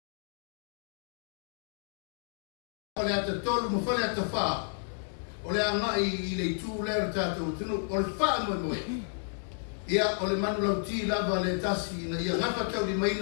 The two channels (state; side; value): silent; right; digital silence